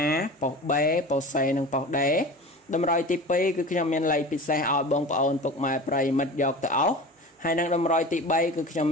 ប៉ុស B ប៉ុស C និងប៉ុស D តម្រុយទី2គឺខ្ញុំមានលេខពិសេសឲ្យបងប្អូនពុកម៉ែប្រិយមិត្តយកទៅអស់ហើយនឹងតម្រុយទី3គឺខ្ញុំ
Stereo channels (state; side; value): normal; both; correlation 0.34